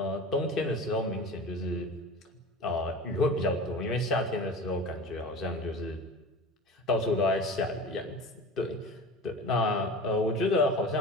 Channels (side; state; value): both; normal; correlation 0.34